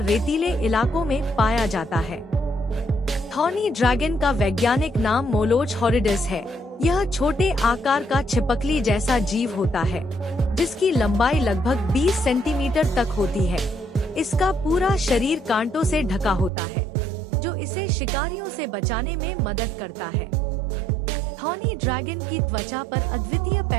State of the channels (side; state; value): left; drops out; at 16.5 s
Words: रेतीले इलाकों में पाया जाता है। थॉनी ड्रैगन का वैज्ञानिक नाम मोलोच हॉरिडिस है। यह छोटे आकार का छिपकली जैसा जीव होता है, जिसकी लंबाई लगभग 20 सेंटीमीटर तक होती है। इसका पूरा शरीर कांटों से ढका होता है, जो इसे शिकारियों से बचाने में मदद करता है। थॉनी ड्रैगन की त्वचा पर अद्वितीय